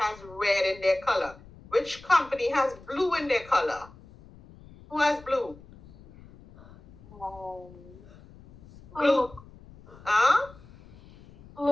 red in their color. Which company has blue in their color? Who has blue? Blue. Huh?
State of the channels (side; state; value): left; noise; rumble, 21 dB below the sound